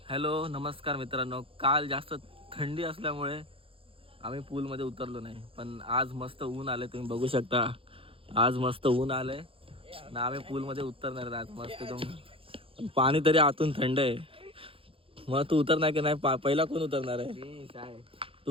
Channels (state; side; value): late; left; 0.27 ms